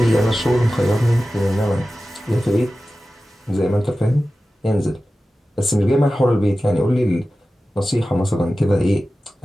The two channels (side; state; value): both; normal; correlation 0.95